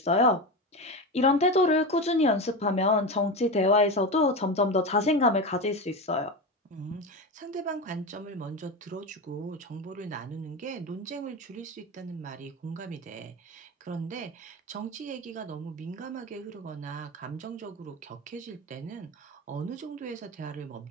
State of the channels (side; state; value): both; normal; correlation 0.21